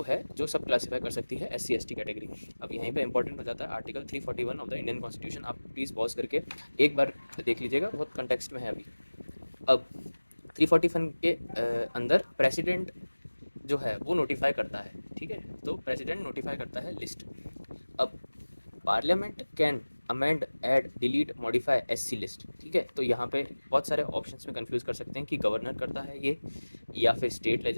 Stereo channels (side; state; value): both; inverted; correlation -1.00